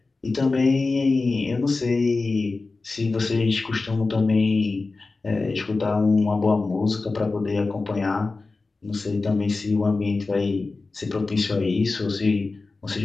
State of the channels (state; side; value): quieter; right; 3.7 dB